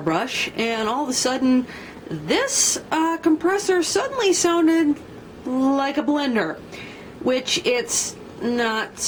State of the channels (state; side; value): identical; both; correlation 1.00